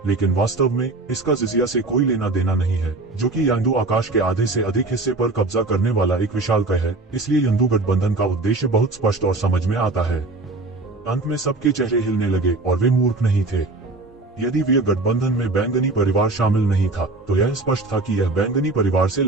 लेकिन वास्तव में इसका जिजिया से कोई लेना देना नहीं है, जो कि यंदू आकाश के आधे से अधिक हिस्से पर कब्जा करने वाला एक विशालकाय है। इसलिए यंदू गठबंधन का उद्देश्य बहुत स्पष्ट और समझ में आता है। अंत में सबके चेहरे हिलने लगे और वे मूर्ख नहीं थे। यदि वे गठबंधन में बैंगनी परिवार शामिल नहीं था, तो यह स्पष्ट था कि यह बैंगनी परिवार से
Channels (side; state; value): left; quieter; 3.2 dB